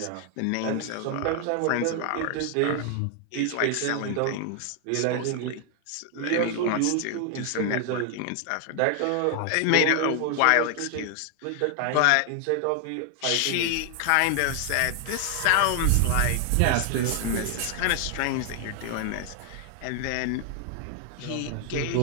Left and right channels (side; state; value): both; different; correlation 0.00